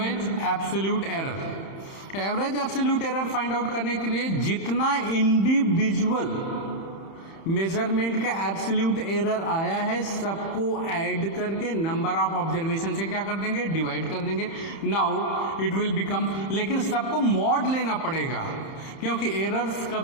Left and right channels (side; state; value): right; late; 31 ms